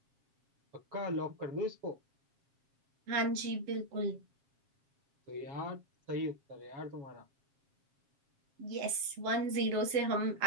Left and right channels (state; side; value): late; left; 7.4 ms